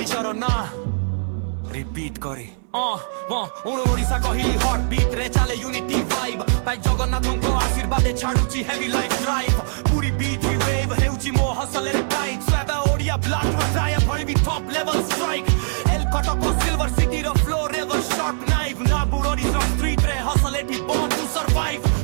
ନାଁ ରିପିଟ୍ କରେ ଓଡ଼ିଶା କହିଲି ହଟ୍ ବିଟ୍ ରେ ଚାଲେ ୟୁନିଟି ଭାଇବ୍ ଭାଇ ଜଗନ୍ନାଥଙ୍କ ଆଶୀର୍ବାଦେ ଛାଡୁଛି heavy life drive Puri beat wave ହେଉଛି ମୋ ହସଲରେ ଟାଇଟ୍ ସ୍ୱାଦ ଓଡ଼ିଆ ବ୍ଲଡ୍ ବଜାୟ ଭଳିବି ଟପ୍ ଲେଭେଲ୍ ଷ୍ଟ୍ରାଇକ୍ ଏଲ୍ କଟକ ସିଲଭର ସିଟିର ଫ୍ଲୋ ରେଭର୍ ସର୍ଟ ନାଇଭ୍ ନାବୁର ଓଡ଼ିଶା ଷ୍ଟ୍ରିଟ୍ ରେ ହସଲ ଏଠି born to survive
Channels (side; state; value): left; silent; 61 dB below the other